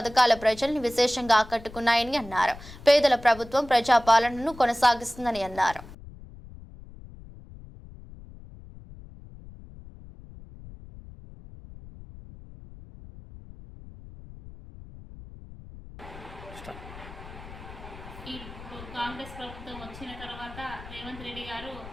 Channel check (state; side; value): noise; left; rumble, 16 dB below the sound